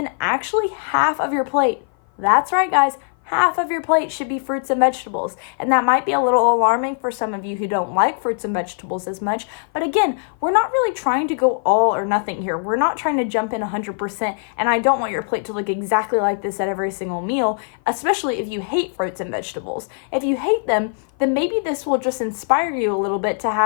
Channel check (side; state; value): right; silent; 55 dB below the other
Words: actually half of your plate. That's right, guys. Half of your plate should be fruits and vegetables. And that might be a little alarming for some of you who don't like fruits and vegetables as much. But again, we're not really trying to go all or nothing here. We're not trying to jump in 100%. And I don't want your plate to look exactly like this at every single meal, especially if you hate fruits and vegetables. If you hate them, then maybe this will just inspire you a little bit to